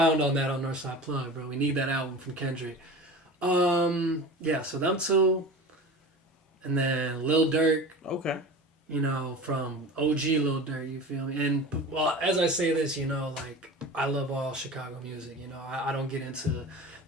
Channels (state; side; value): normal; both; correlation 0.34